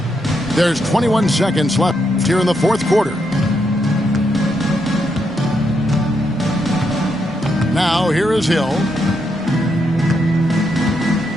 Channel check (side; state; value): both; normal; correlation 0.80